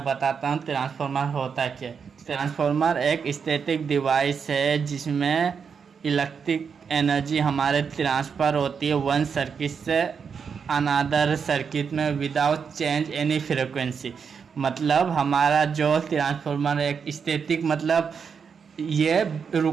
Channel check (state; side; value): quieter; left; 6.3 dB